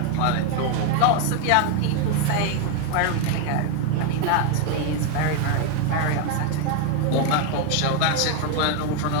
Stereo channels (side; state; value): both; different; correlation 0.01